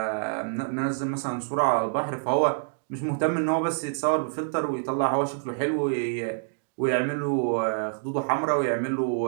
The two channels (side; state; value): left; silent; digital silence